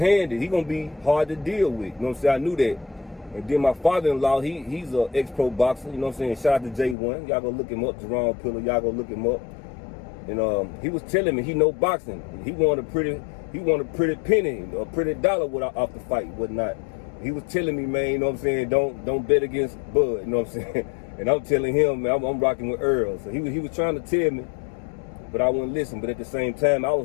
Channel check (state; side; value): drops out; right; at 7.0 s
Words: he gonna be hard to deal with, you know what I'm saying? I knew that. And then my father-in-law, he's an ex-pro boxer, you know what I'm saying? Shout out to J1, y'all go look him up, Jerome Pillar, y'all go look him up. And he was telling me he know boxing. He wanted a pretty penny, a pretty dollar off the fight, whatnot. He was telling me, man, you know what I'm saying, don't bet against Bud, you know what I'm saying? And I'm telling him, man, I'm rocking with Earl. So he was trying to tell me, but I wouldn't listen. But at the same time, I was